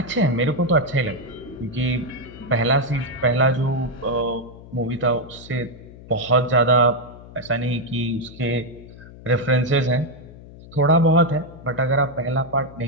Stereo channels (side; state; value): left; noise; hum, 18 dB below the sound